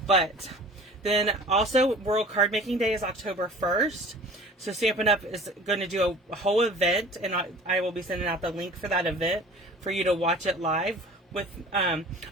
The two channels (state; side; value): normal; both; correlation 0.44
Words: But then also, World Card Making Day is October 1st. So Stampin'UP is going to do a whole event, and I will be sending out the link for that event for you to watch it live.